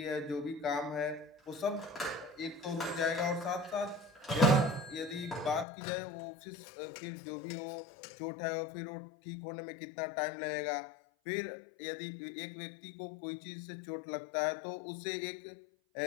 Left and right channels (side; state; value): right; drops out; at 5.7 s